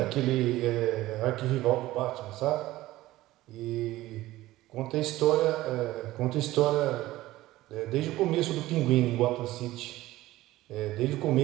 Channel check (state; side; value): quieter; left; 16.7 dB